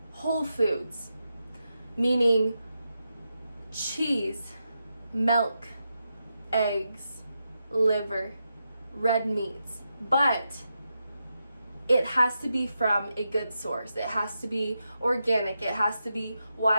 Whole foods, meaning cheese, milk, eggs, liver, red meats, but it has to be from a good source. It has to be organic. It has to be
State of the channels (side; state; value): both; inverted; correlation -0.87